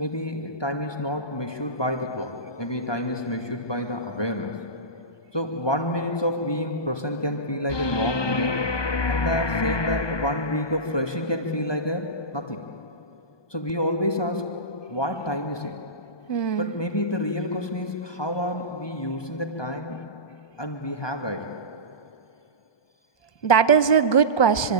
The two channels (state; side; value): late; right; 1.2 ms